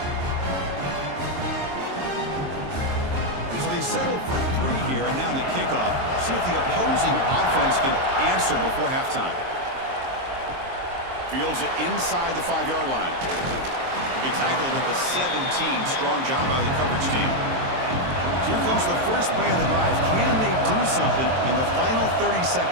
So they settle for 3 here, and now the kickoff. See if the opposing offense can answer before halftime. Fields it inside the 5-yard line. He'll be tackled at the 17. Strong job by the coverage team. So here comes the first play of the drive. Can they do something in the final 30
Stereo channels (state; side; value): late; left; 23 ms